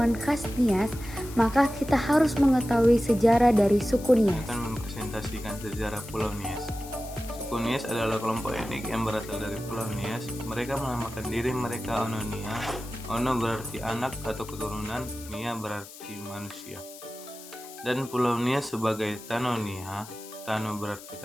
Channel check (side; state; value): left; noise; hiss, 16 dB below the sound